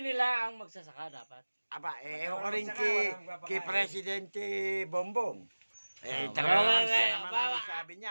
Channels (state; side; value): inverted; both; correlation -1.00